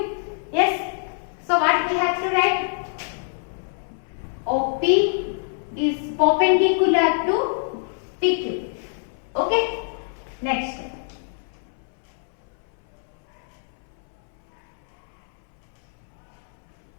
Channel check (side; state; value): right; silent; 61 dB below the other